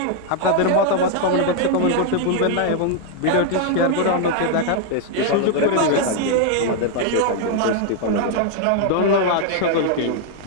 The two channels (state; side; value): different; both; correlation 0.00